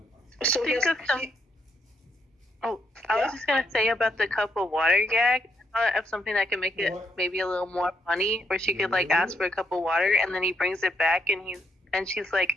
So I was just gonna say about the cup of water gag. Of something that can make it maybe a little more funny, where she could like ask for a cup of water, and then he brings it back, and she's like,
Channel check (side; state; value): both; normal; correlation 0.76